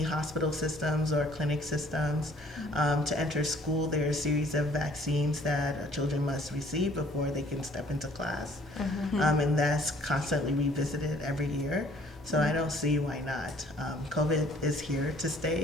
hospital systems or clinic systems. To enter school, there are a series of vaccines that children must receive before they can step into class. And that's constantly revisited every year. So I don't see why not. COVID is here to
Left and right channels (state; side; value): normal; both; correlation 0.58